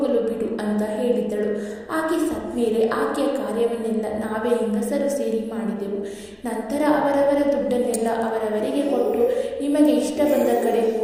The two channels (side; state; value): both; identical; correlation 1.00